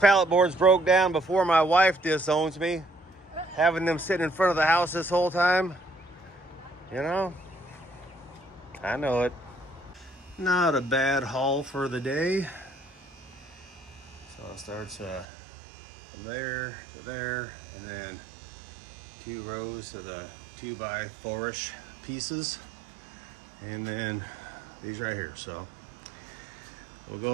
boards broke down before my wife disowns me. Having them sitting in front of the house this whole time, you know, I know it. Not a bad haul for the day. So it starts from there to there, and then 2 rows of the 2x4-ish pieces, and then these right here. So we'll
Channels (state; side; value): drops out; left; at 15.2 s